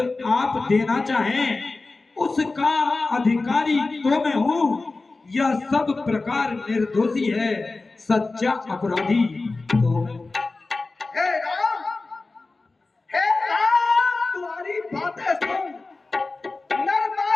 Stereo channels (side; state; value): right; quieter; 3.5 dB